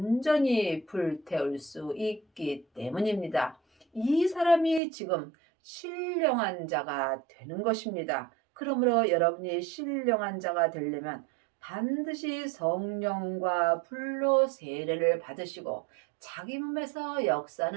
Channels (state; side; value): drops out; left; at 4.8 s